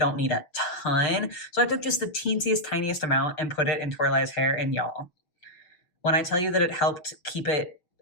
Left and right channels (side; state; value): right; late; 6.3 ms